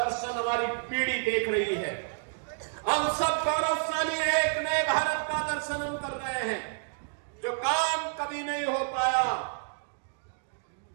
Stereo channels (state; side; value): silent; left; digital silence